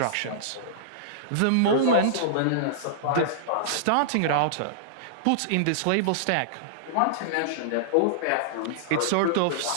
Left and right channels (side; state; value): both; different; correlation -0.02